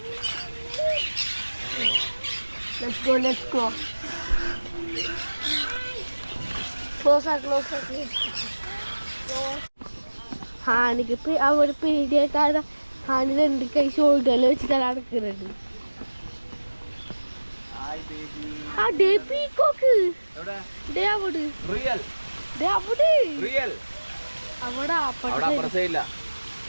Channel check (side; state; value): both; inverted; correlation -1.00